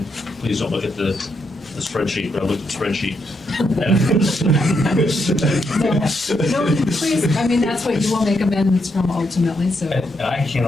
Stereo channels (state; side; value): normal; both; correlation 0.80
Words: please don't look at the spreadsheet, but I looked at the spreadsheet. No, please, I mean, that's what you will make amendments from ultimately, so. And I